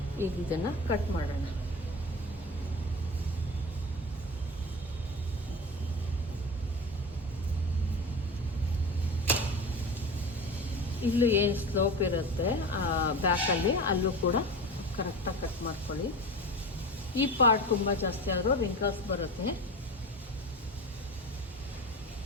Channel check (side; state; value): both; normal; correlation 0.30